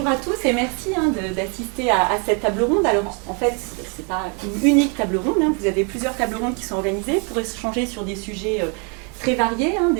à tous et merci d'assister à cette table ronde. Alors en fait, ce n'est pas une unique table ronde, vous avez plusieurs tables rondes qui sont organisées pour échanger sur des sujets très variés,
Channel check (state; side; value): quieter; left; 36.6 dB